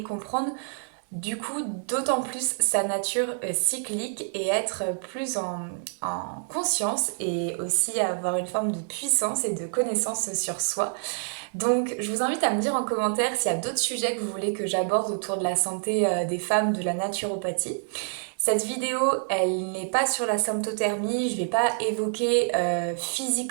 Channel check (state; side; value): silent; left; digital silence